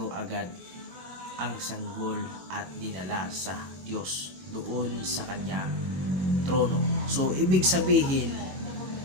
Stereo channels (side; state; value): left; late; 21 ms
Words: agad ang sanggol at dinala sa Diyos doon sa kanya trono. So ibig sabihin,